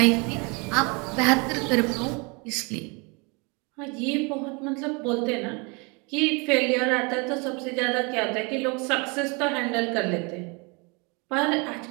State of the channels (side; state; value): left; quieter; 30.4 dB